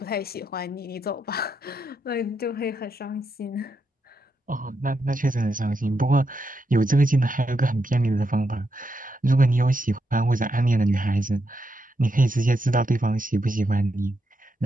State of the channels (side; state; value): both; normal; correlation 0.82